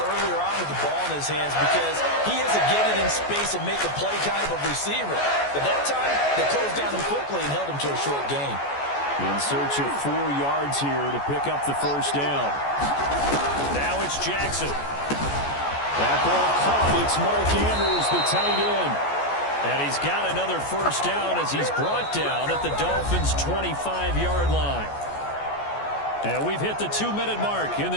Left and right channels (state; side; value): late; right; 14 ms